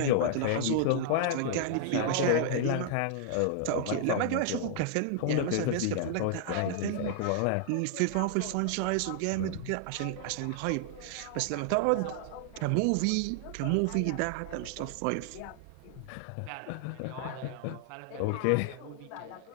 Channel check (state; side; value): different; both; correlation -0.01